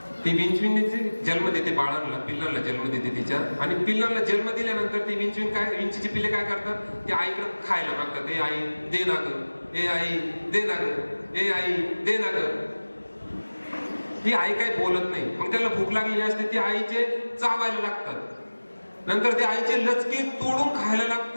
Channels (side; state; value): both; inverted; correlation -1.00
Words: ती विंचवीने जन्म देते बाळांना, पिल्लांना जन्म देते तिच्या. आणि पिल्लांना जन्म दिल्यानंतर ती विंचवीन काय, विंचीची पिल्ले काय करतात? ते आईकडे खायला मागतात. ए आई दे ना ग, ए आई दे ना ग, ए आई दे ना ग. ती आई काही बोलत नाही. मग त्याला भूक लागलेली असते, ती आईचे चावायला लागतात. नंतर ते आईचे लचके तोडून खायला